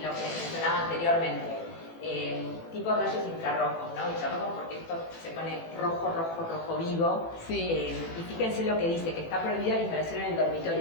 lo que mencionaba anteriormente. Tipo rayos infrarrojos, ¿no? Infrarrojos porque esto se pone rojo vivo. Sí. Y fíjense lo que dice, que está prohibida la instalación en el dormitorio,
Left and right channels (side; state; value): right; late; 18 ms